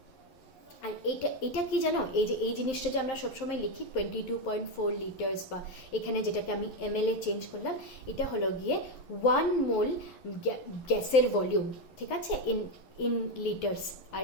আর এইটা কি জানো, এই যে এই জিনিসটা যে আমরা সবসময় লিখি 22.4 লিটার্স, বা এখানে যেটাকে আমি ml এ চেঞ্জ করলাম, এটা হলো গিয়ে 1 মোল গ্যাসের ভলিউম, ঠিক আছে? ইন লিটার্স, আর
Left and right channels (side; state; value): right; late; 11 ms